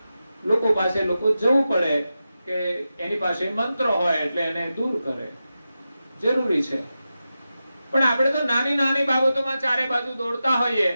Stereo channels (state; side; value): inverted; both; correlation -0.91